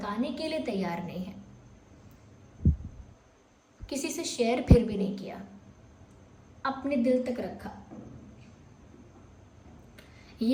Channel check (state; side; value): identical; both; correlation 1.00